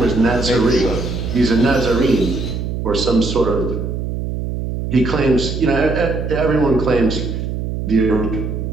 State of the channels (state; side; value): noise; right; hum, 4 dB below the sound